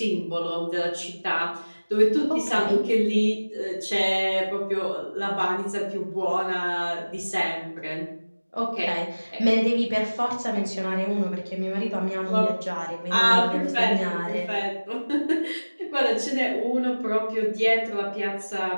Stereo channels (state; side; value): inverted; both; correlation -1.00